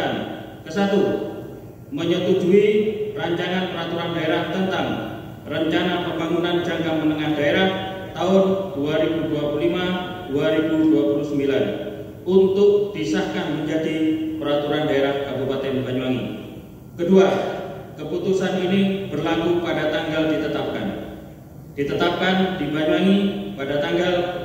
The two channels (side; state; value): both; identical; correlation 1.00